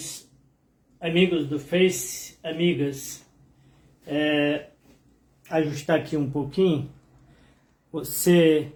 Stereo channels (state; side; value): identical; both; correlation 1.00